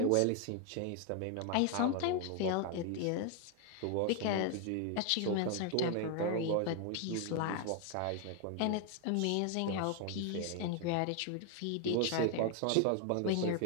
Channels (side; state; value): both; different; correlation 0.01